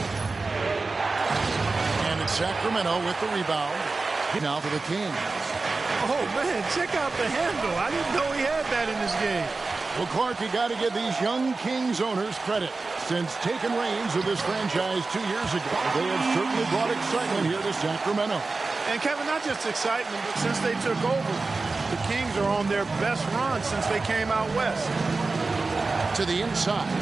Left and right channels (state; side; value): quieter; left; 3.8 dB